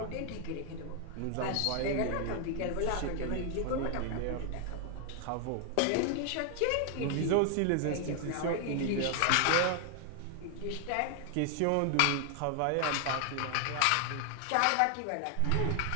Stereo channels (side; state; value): both; different; correlation 0.00